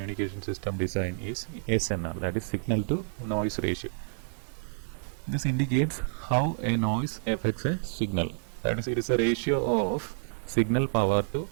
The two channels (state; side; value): silent; left; 57 dB below the other